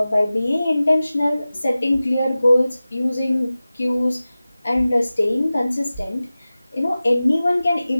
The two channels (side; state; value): both; inverted; correlation -0.96